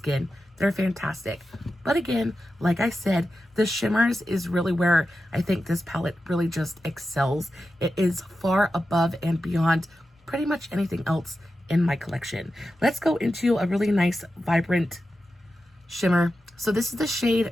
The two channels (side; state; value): both; normal; correlation 0.91